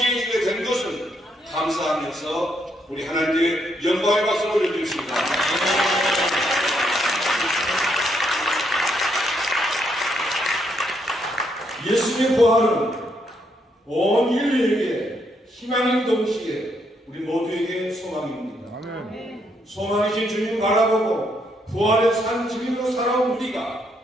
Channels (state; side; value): normal; both; correlation 0.75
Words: 된 것을 감사하면서 우리 하나님께 영광의 박수를 올려드립니다. 예수님의 부활은 온 인류에게 희망인 동시에 우리 모두에게 소망입니다. 소망이신 주님 바라보고 부활의 산 증인으로 살아온 우리가